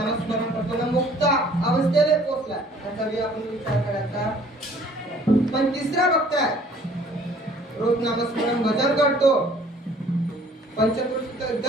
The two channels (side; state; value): both; normal; correlation 0.56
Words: करतो ना मुक्त अवस्थेला पोहोचला त्याचा बी आपण विचार करायचा. पण तिसरा बघताय रोज नामस्मरण भजन करतो पंचकृषी